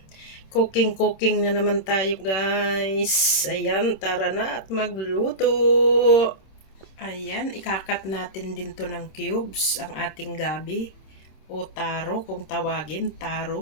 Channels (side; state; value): right; late; 26 ms